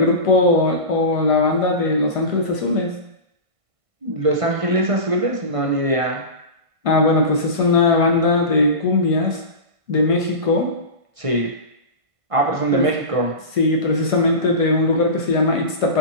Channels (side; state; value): left; late; 1.5 ms